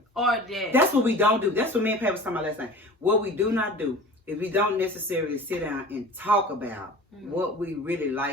Or that. That's what we don't do. That's what me and Pat was talking about last night. What we do not do is we don't necessarily sit down and talk about what we really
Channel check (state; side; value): normal; both; correlation 0.40